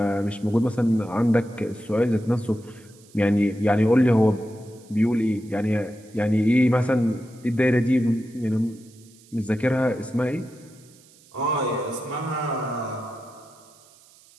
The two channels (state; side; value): noise; right; hiss, 27 dB below the sound